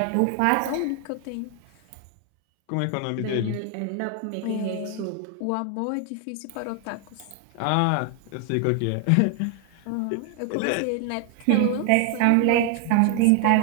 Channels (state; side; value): different; both; correlation 0.00